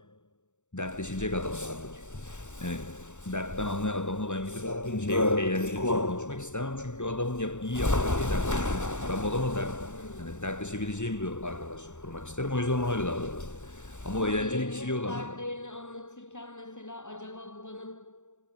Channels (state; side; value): late; right; 0.84 ms